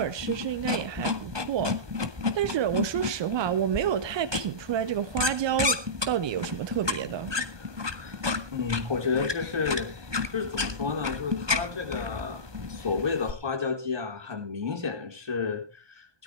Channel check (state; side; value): late; left; 1.2 ms